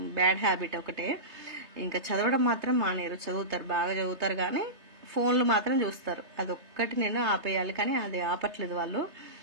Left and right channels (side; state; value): left; late; 3.3 ms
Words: బ్యాడ్ హ్యాబిట్ ఒకటే. ఇంకా చదవడం మాత్రం మానేరు, చదువుతారు, బాగా చదువుతారు, కానీ ఫోన్లు మాత్రం చూస్తారు. అదొక్కటి నేను ఆపేయాలి, కానీ అది ఆపట్లేదు వాళ్ళు.